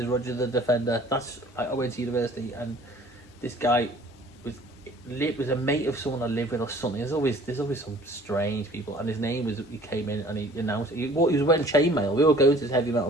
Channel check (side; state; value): both; normal; correlation 0.51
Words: Roger the Defender. I went to university, and this guy was a mate of someone I lived with or something. There's always some strange people, and his name was, he came in and he announced he was wearing chainmail. We were going to this heavy metal